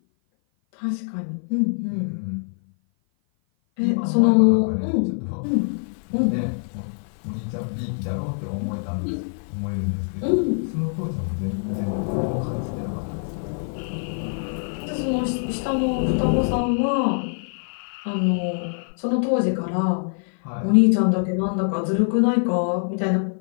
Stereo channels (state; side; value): silent; right; 56 dB below the other